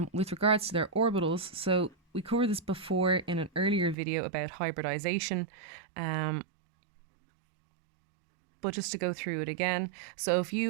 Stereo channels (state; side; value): drops out; left; at 4.0 s